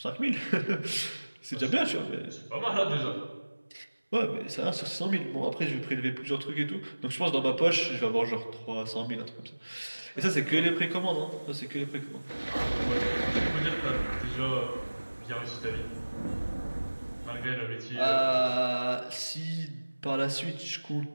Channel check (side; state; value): both; inverted; correlation -1.00